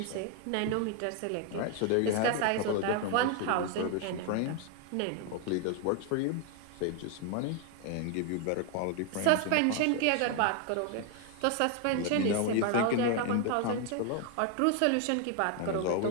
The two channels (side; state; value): both; different; correlation 0.01